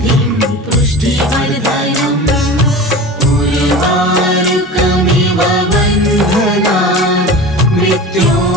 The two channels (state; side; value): normal; both; correlation 0.34